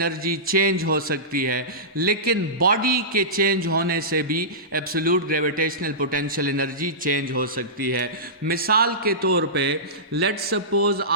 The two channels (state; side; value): normal; both; correlation -0.20